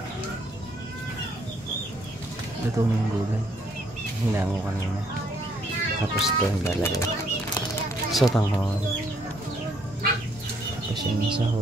Luto na yung gulay. Hinango kanina. Tapos ito yung lalagay. Sotanghon. Tapos yung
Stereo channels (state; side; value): normal; both; correlation 0.68